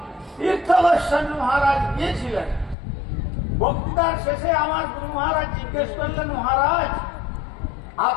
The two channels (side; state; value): right; drops out; at 2.8 s